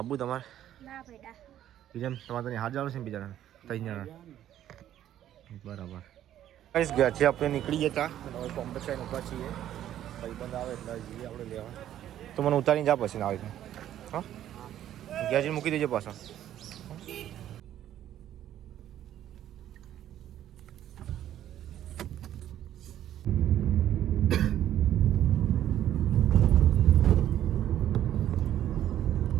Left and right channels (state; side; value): quieter; left; 11.7 dB